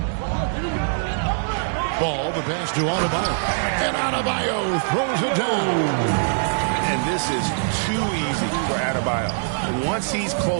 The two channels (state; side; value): silent; left; digital silence